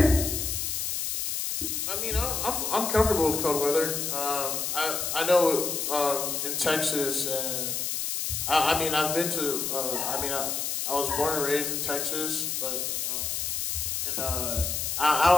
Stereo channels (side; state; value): left; noise; hiss, 1 dB below the sound